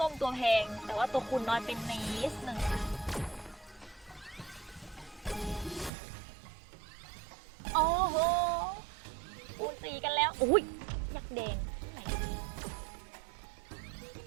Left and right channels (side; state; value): left; drops out; at 5.9 s